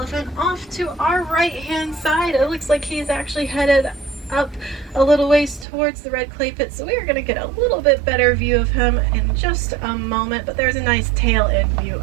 off to our right-hand side. It looks like he's actually headed up a little ways towards the red clay pit, so we are going to get a little bit better view of him in just a moment, but there's a nice tail end view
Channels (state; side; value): drops out; left; at 5.7 s